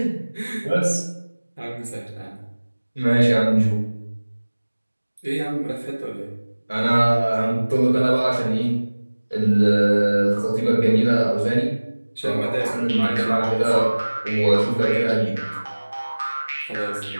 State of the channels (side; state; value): both; inverted; correlation -1.00